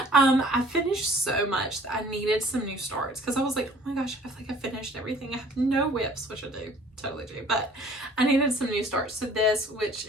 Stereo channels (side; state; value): both; normal; correlation 0.53